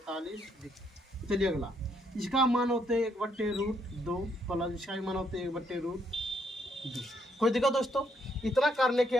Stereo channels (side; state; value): both; normal; correlation 0.73